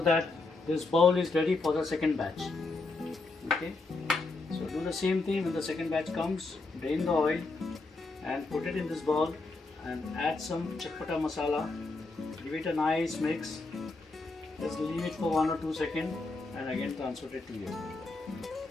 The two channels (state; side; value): quieter; right; 3.5 dB